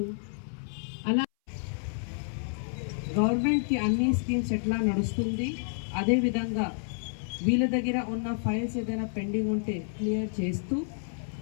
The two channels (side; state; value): right; silent; 58 dB below the other